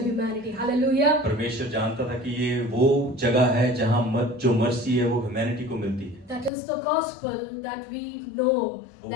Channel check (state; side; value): drops out; right; at 6.5 s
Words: humanity. Hallelujah. परमेश्वर जानता था कि ये वो जगह है जहाँ जो मर्सी है वो ह्यूमैनिटी को मिलती है। That is the gospel that we know,